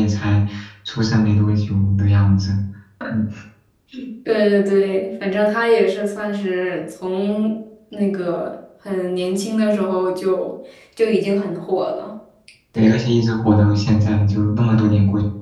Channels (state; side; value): identical; both; correlation 1.00